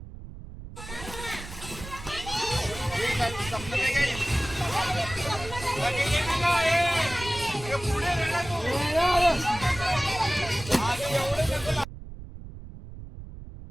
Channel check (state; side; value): noise; right; rumble, 13 dB below the sound